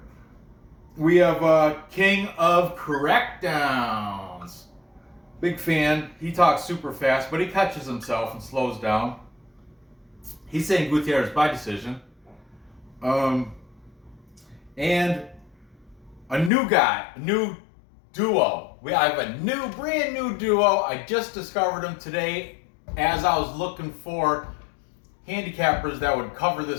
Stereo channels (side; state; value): right; drops out; at 16.5 s